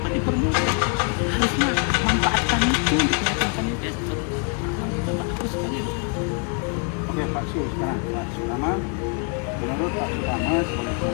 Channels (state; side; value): quieter; right; 37.0 dB